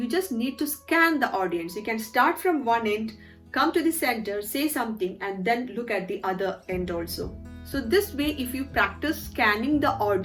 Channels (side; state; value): both; identical; correlation 1.00